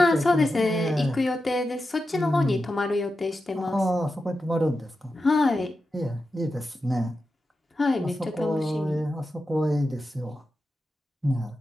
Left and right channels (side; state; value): both; normal; correlation 0.90